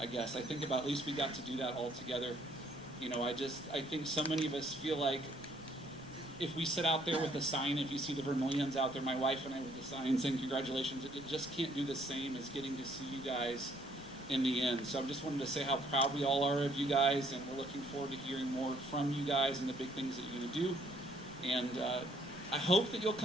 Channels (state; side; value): noise; left; rumble, 21 dB below the sound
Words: guess. I think about at least we got to do that all together. You know, I think so many of us feel like if we sit out there with a sign, if you see the Vermillions out there, my wife and I with the sign saying congratulations, it just can't do the same as getting to see you guys in the end. So I just wanted to say how proud we all are of you guys, and we're looking forward to hearing more from you guys and the big things that you're going to do. And I hope that you'll